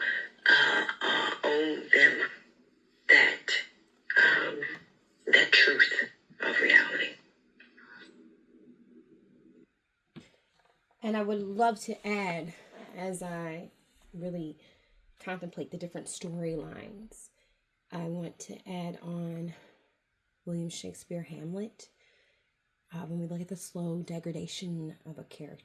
owe them that truth of reality. And I would love to add, as I really contemplate the different storylines, I want to add on William Shakespeare Hamlet. When we look at the slow degradation of a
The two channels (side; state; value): both; identical; correlation 1.00